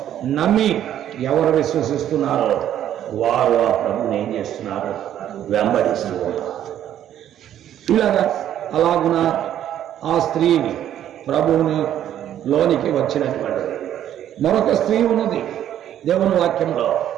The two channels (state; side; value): quieter; left; 11.0 dB